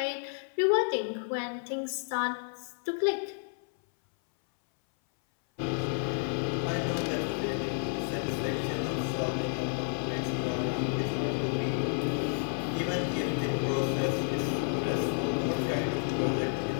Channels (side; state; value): right; silent; 57 dB below the other